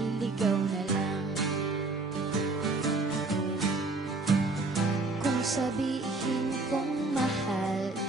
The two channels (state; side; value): quieter; left; 3.4 dB